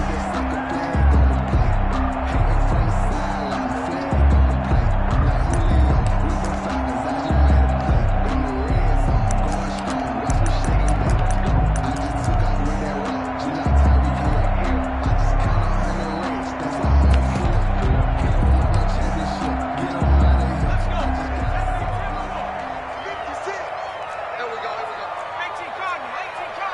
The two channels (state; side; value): identical; both; correlation 1.00